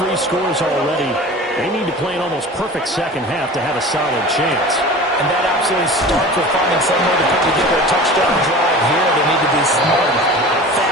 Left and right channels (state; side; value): normal; both; correlation 0.37